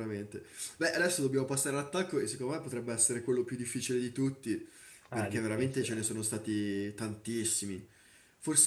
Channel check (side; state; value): both; identical; correlation 1.00